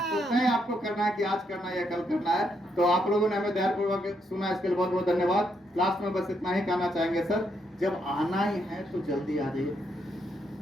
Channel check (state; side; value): normal; both; correlation 0.77